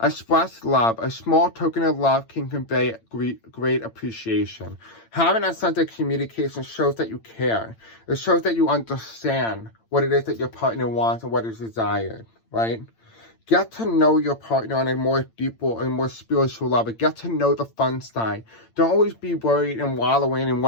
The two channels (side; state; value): right; late; 8.8 ms